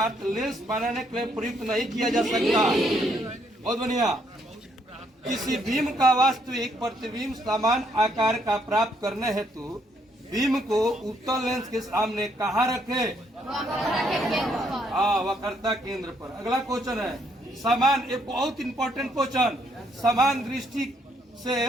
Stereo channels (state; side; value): normal; both; correlation 0.72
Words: लेंस बनाने के लिए प्रयुक्त नहीं किया जा सकता? बहुत बढ़िया। किसी बीम का वास्तविक प्रतिबिंब समान आकार का प्राप्त करने हेतु बीम को उत्तल लेंस के सामने कहाँ रखे? वक्रता केंद्र पर। अगला क्वेश्चन है, समान, एक बहुत इंपॉर्टेंट क्वेश्चन, समान दृष्टि से